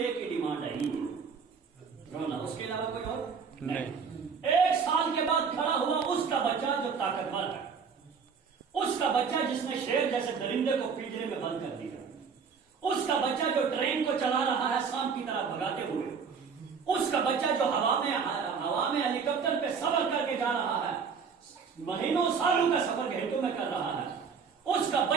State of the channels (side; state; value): left; quieter; 5.9 dB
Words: ہی ڈیمانڈ ہے ہی رونا, اس کے علاوہ کوئی اور نہیں. 1 سال کے بعد کھڑا ہوا اس کا بچہ جو طاقتور ہے, اس کا بچہ جس نے شیر جیسے درندے کو پنجرے میں بند کر دیا, اس کا بچہ جو ٹرین کو چلا رہا ہے شام کی طرح بھگاتے ہوئے, اس کا بچہ جو ہوا میں ہیلی کاپٹر پہ سفر کر کے جا رہا ہے, مہینوں سالوں کا سفر گھنٹوں میں کر رہا ہے, اس کا